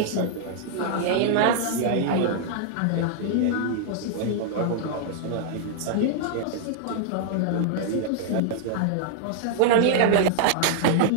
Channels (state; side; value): different; both; correlation -0.01